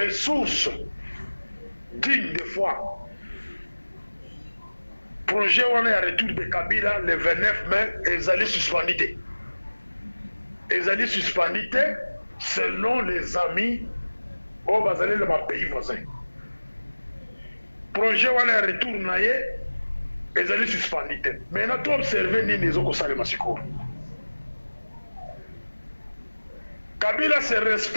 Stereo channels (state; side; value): inverted; both; correlation -1.00